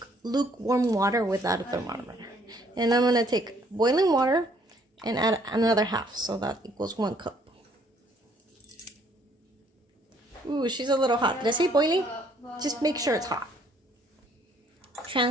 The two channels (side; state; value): both; normal; correlation 0.64